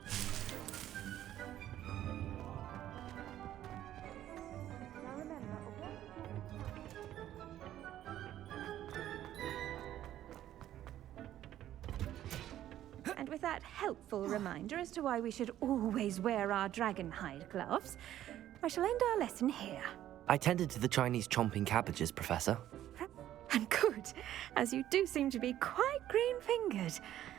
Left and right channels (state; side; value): quieter; left; 12.4 dB